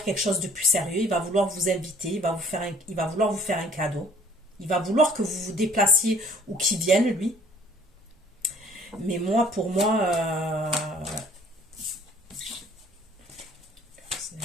quelque chose de plus sérieux. Il va vouloir vous inviter. Il va vouloir vous faire un cadeau. Il va vouloir que vous vous déplaciez ou qu'il vienne, lui. Mais moi, pour moi, c'est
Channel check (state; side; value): normal; both; correlation 0.56